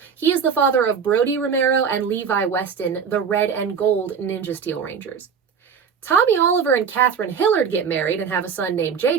He is the father of Brody Romero and Levi Weston, the Red and Gold Ninja Steel Rangers. Tommy Oliver and Catherine Hillard get married and have a son named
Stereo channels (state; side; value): quieter; left; 6.5 dB